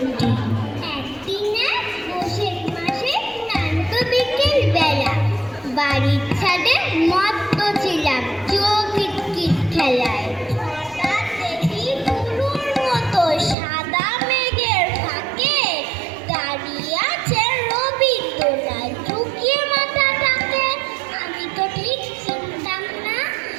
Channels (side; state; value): left; drops out; at 13.6 s